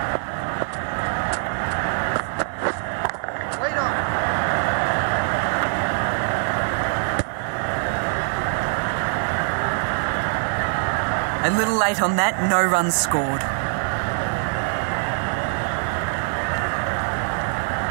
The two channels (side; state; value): left; silent; 63 dB below the other